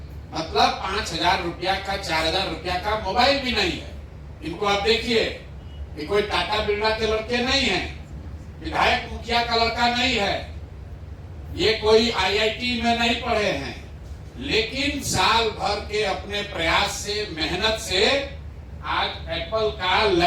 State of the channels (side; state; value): both; identical; correlation 1.00